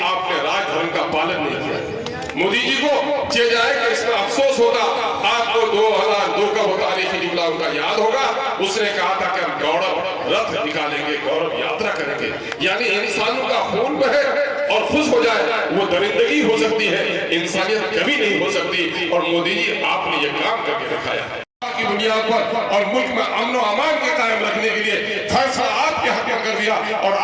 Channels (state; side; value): identical; both; correlation 1.00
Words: आपने राजधर्म का पालन नहीं किया। मोदी जी को जे जाए कि इसमें अफसोस होगा। आपको 2002 का बताने की जुमला उनका याद होगा। उसने कहा था कि हम गौरव रथ निकालेंगे, गौरव यात्रा करेंगे, यानी इंसानों का खून बहे और खुश हो जाए, वो दरिंदगी हो सकती है, इंसानियत कभी नहीं हो सकती। और मोदी जी आपने ये काम करके दिखाया है की दुनिया पर, और मुल्क में अमन और अमान के कायम रखने के लिए फैसला आपके हक में कर दिया और